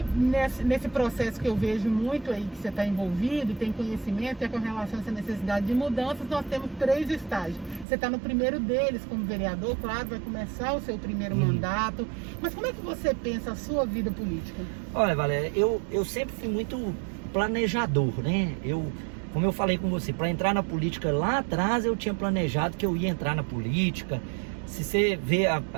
nesse processo que eu vejo muito aí, que você está envolvido, tem conhecimento, é com relação a essa necessidade de mudanças, nós temos 3 estágios. Você está no primeiro deles como vereador, claro, vai começar o seu primeiro mandato, mas como é que você pensa a sua vida política? Olha, Valéria, eu sempre fui muito planejador, né? Como eu falei com você, para entrar na política lá atrás, eu tinha planejado que eu ia entrar na política. Se você vê,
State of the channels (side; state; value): left; drops out; at 7.9 s